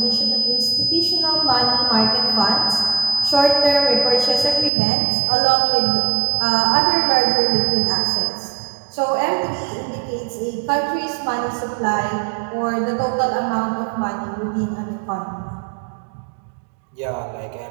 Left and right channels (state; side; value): drops out; left; at 4.7 s